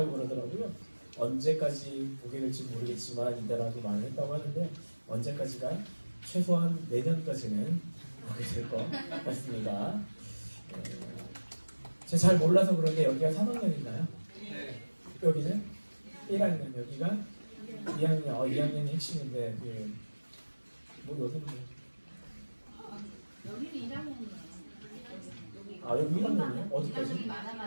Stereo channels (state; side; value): inverted; both; correlation -1.00